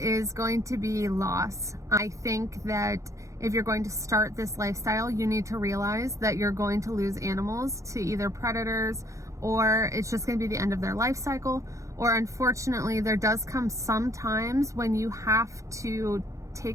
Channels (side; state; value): left; late; 0.15 ms